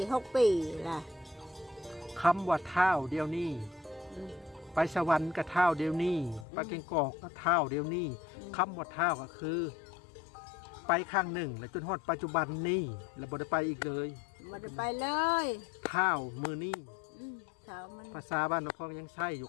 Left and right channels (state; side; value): drops out; right; at 6.5 s